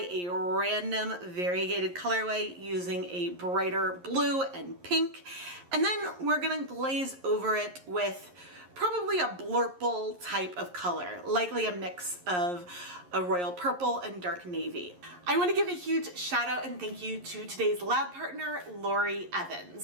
a random variegated colorway using a brighter blue and pink, and then we're gonna glaze over it with probably a blurple type of color, likely a mix of a royal purple and dark navy. I want to give a huge shout out and thank you to today's lab partner, Lori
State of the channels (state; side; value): late; left; 11 ms